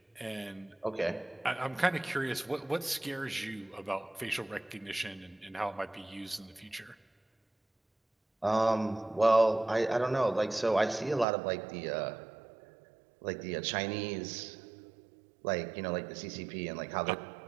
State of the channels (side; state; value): left; drops out; at 11.2 s